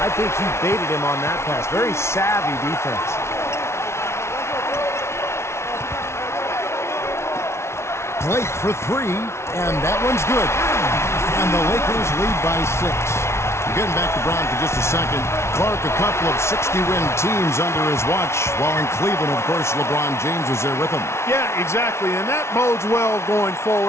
think he baited him on that pass. Very savvy defense. Blake for 3, and that one's good. And the Lakers lead by 6. Getting back to Brown for just a second. Clark, a couple of 60-win teams under his watch, while in Cleveland, of course, LeBron James was there with him. Yeah, exactly, and that bodes well going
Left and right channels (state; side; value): late; right; 0.13 ms